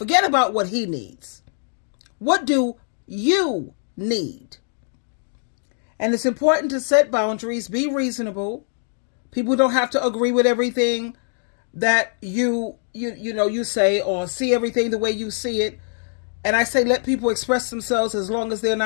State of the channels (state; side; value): silent; right; digital silence